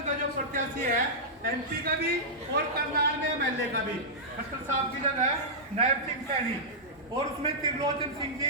का जो प्रत्याशी है MP का भी और करनाल में MLA का भी, खट्टर साहब की जगह नायब सिंह सैनी, और उसमें त्रिलोचन सिंह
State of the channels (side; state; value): both; normal; correlation -0.12